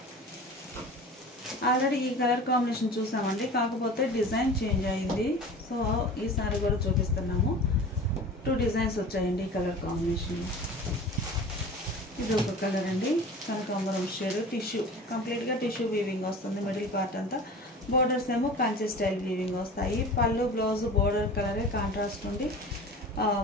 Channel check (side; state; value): both; normal; correlation 0.38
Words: ఆల్రెడీ ఈ కలర్ కాంబినేషన్ చూసామండి, కాకపోతే డిజైన్ చేంజ్ అయింది. సో ఈ సారీ కూడా చూపిస్తున్నాము. 2 డిజైన్స్ వచ్చాయండి ఈ కలర్ కాంబినేషన్. ఇది ఒక కలర్ అండి, కనకాంబరం షేడ్. టిష్యూ కంప్లీట్గా టిష్యూ వీవింగ్ వస్తుంది మిడిల్ పార్ట్ అంతా. బోర్డర్స్ ఏమో కంచి స్టైల్ వీవింగ్ వస్తాయి. పళ్ళు బ్లౌజ్ బోర్డర్ కలరే కాంట్రాస్ట్ ఉంది.